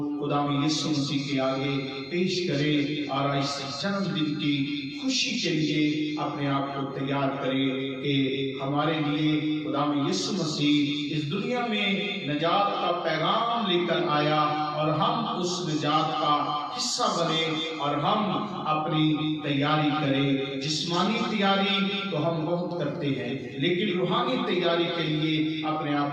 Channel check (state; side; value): identical; both; correlation 1.00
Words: खुदावंद यीशु मसीह के आगे पेश करें और इस जन्मदिन की खुशी के लिए अपने आप को तैयार करें कि हमारे लिए खुदावंद यीशु मसीह इस दुनिया में निजात का पैगाम लेकर आया और हम उस निजात का हिस्सा बने और हम अपनी तैयारी करें। जिस्मानी तैयारी तो हम बहुत करते हैं, लेकिन रूहानी तैयारी के लिए अपने